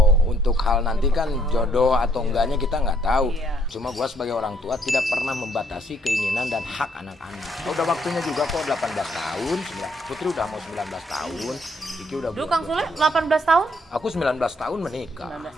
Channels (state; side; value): normal; both; correlation 0.69